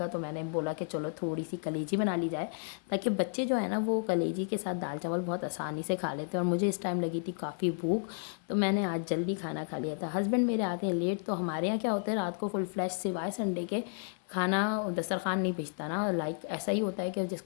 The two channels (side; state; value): right; silent; 56 dB below the other